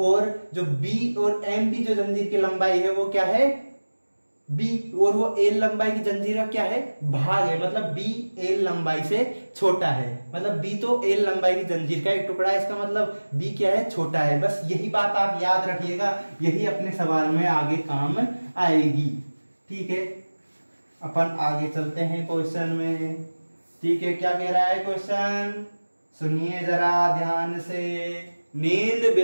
जो b और m की जो जंजीर की लंबाई है वो क्या है b, और वो l लंबाई की जंजीर का क्या है भाग है, मतलब b l लंबाई से छोटा है, मतलब b तो l लंबाई की जंजीर का एक टुकड़ा है, इसका मतलब b क्या है छोटा है। बस यही बात आप याद रखिएगा, यही अपने सवाल में आगे काम आएगी, ठीक है। अपन आगे चलते हैं क्वेश्चन में, ठीक है। क्या कह रहा है क्वेश्चन, सुनिए जरा ध्यान से, नींद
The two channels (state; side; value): inverted; both; correlation -1.00